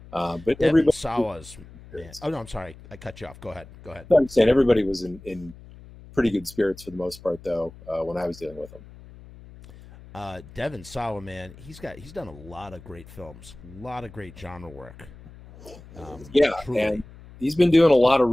But Devin everybody, Sawa's, man. Oh no, I'm sorry, I cut you off. Go ahead. I'm saying everybody was in pretty good spirits for the most part, though, when I was dealing with them. Devin Sawa, man, he's done a lot of great films, a lot of great genre work. Truly. And he's been doing a lot of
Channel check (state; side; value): noise; left; hum, 19 dB below the sound